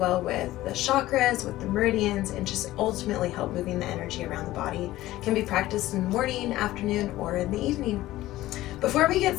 with the chakras, with the meridians, and just ultimately help moving the energy around the body. It can be practiced in the morning, afternoon, or in the evening. Before we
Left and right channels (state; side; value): quieter; right; 16.0 dB